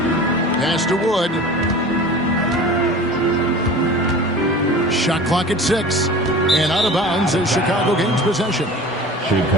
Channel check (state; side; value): normal; both; correlation 0.38